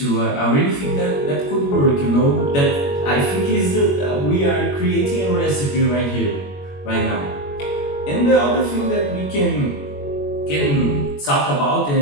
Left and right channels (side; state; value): right; late; 21 ms